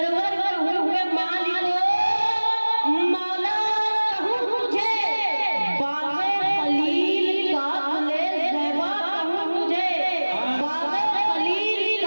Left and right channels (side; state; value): both; inverted; correlation -1.00